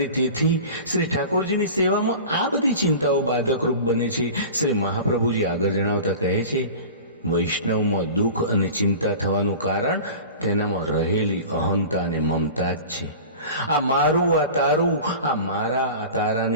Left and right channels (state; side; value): inverted; both; correlation -0.37